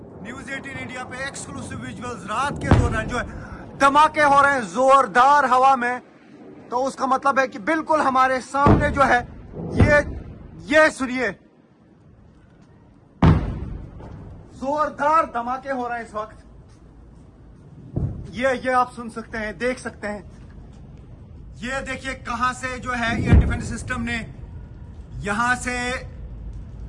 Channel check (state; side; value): identical; both; correlation 1.00